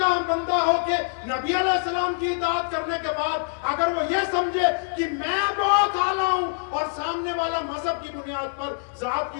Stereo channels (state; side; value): silent; right; 57 dB below the other